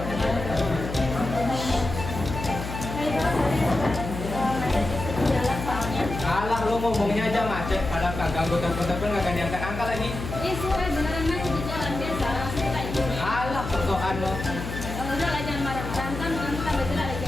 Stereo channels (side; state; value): left; noise; hum, 7 dB below the sound